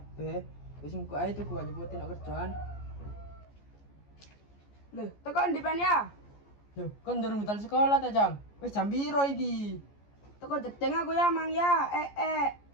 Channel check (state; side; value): late; right; 14 ms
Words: Wis engko ae tuku aja buatin nak kerjaan. Lho, tekan di pen ya? Loh, kon durung betal sekolah ta jam? Wis jam piro iki? Teko jedeng aku ya, Mang ya.